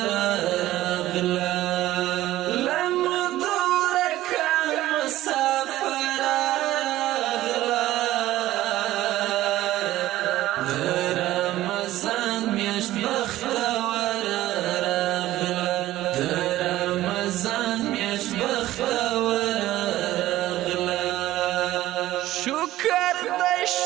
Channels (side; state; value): left; quieter; 15.2 dB